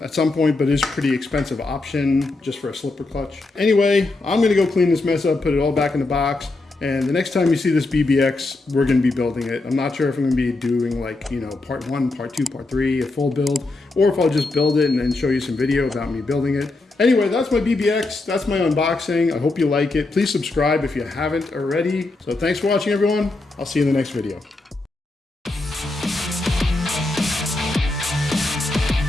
at some point, but is a pretty expensive option just for a slipper clutch. Anyway, I'm gonna go clean this mess up, put it all back in the box. And the next time you see this BBX, we're gonna be building it. I'm not sure if I'm gonna be doing like, you know, part 1, part 2, part 3, a full build, or if I'll just build it and then show you some video about me building it. Anyway, that's my BBX, that's my unboxing. I hope you like it. Please subscribe if you haven't already. So thanks for watching, everyone. I'll see you in the next video.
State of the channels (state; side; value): quieter; right; 3.1 dB